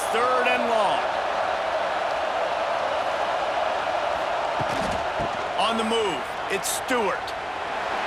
3rd and long. On the move, it's Stewart.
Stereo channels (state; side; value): identical; both; correlation 1.00